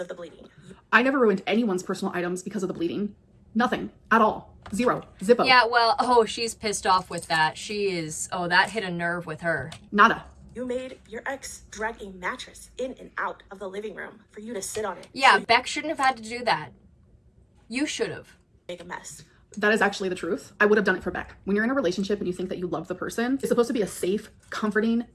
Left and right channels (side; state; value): both; identical; correlation 1.00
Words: of the bleeding. I never ruined anyone's personal items because of the bleeding. Nothing. At all. Zero. Zippo. Yeah, well, oh, she's pissed off with that. She is, oh, that hit a nerve with her. Nada. You made your ex drag a mattress in and out of the living room for you to sit on it. Yeah, So Beck shouldn't have had to do that. You should have. make a mess. That is actually the truth. I would have done it for Beck. When you're in a relationship and you think that you love the person, it's supposed to be a safe, comforting,